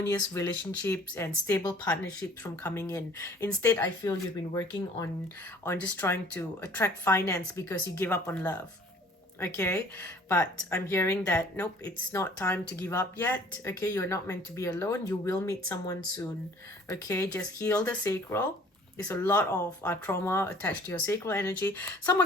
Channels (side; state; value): both; normal; correlation 0.53